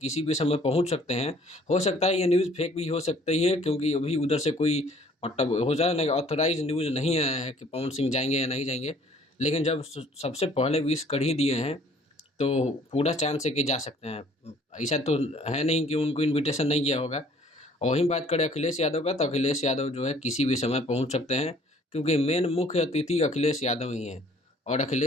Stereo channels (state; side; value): normal; both; correlation 0.57